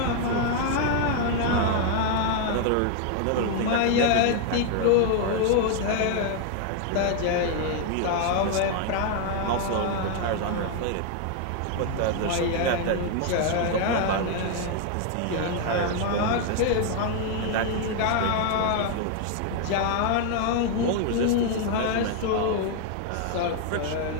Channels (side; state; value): both; different; correlation 0.00